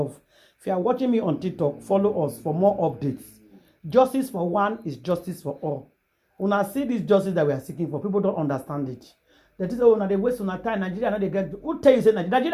If you are watching me on TikTok, follow us for more updates. Justice for one is justice for all. When I see this justice that we are seeking for, people don't understand it. That is, oh, now they waste on time. Nigeria, now they get. Who tell you say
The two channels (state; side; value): identical; both; correlation 1.00